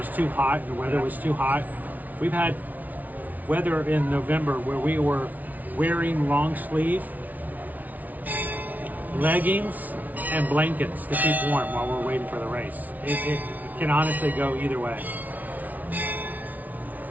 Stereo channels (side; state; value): left; late; 0.077 ms